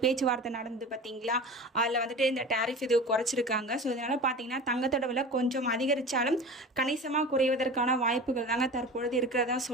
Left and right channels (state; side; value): normal; both; correlation 0.34